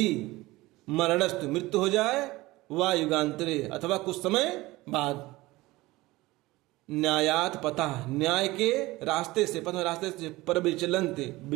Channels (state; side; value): quieter; left; 19.7 dB